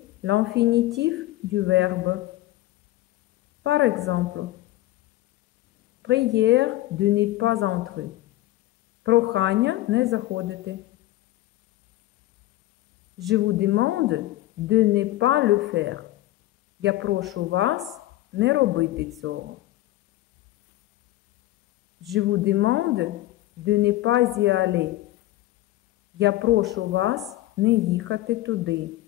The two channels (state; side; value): quieter; right; 16.2 dB